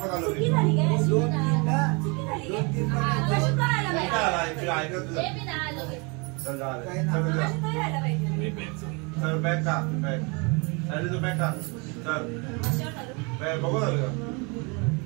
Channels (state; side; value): quieter; left; 30.6 dB